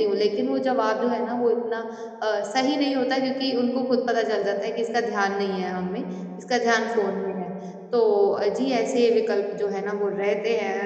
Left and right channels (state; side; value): identical; both; correlation 1.00